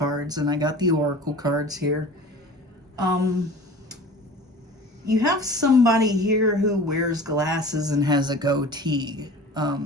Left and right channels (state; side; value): normal; both; correlation 0.40